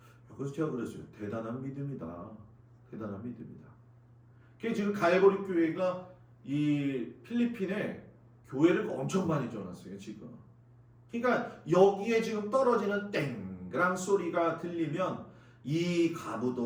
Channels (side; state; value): both; identical; correlation 1.00